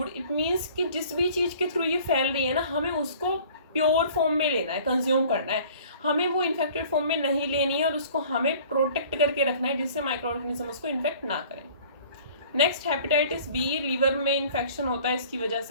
It means कि जिस भी चीज़ के थ्रू ये फैल रही है ना, हमें उसको प्योर फॉर्म में लेना है, कंज्यूम करना है, हमें वो इन्फेक्टेड फॉर्म में नहीं लेनी है और उसको हमें प्रोटेक्ट करके रखना है जिससे माइक्रो ऑर्गेनिज्म उसको इन्फेक्ट ना करें। नेक्स्ट हेपेटाइटिस बी, ये लीवर में इन्फेक्शन होता है, इसकी वजह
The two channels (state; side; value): inverted; both; correlation -0.50